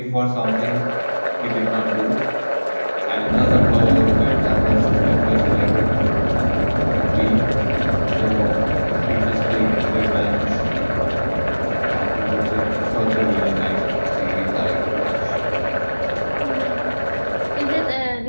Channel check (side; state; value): both; inverted; correlation -1.00